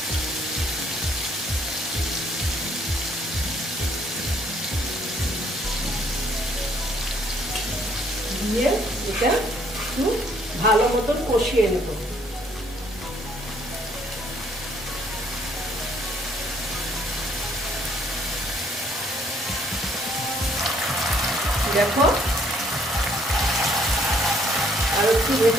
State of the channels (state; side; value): normal; both; correlation 0.64